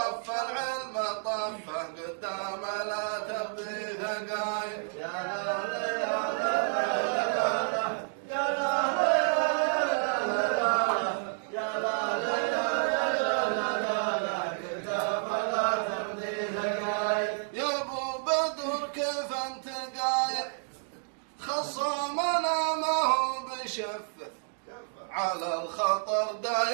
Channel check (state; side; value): silent; left; digital silence